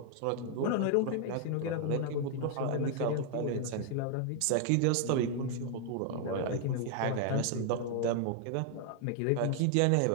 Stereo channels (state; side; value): different; both; correlation 0.00